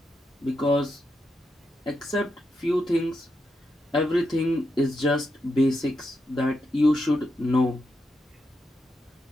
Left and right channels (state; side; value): normal; both; correlation 0.85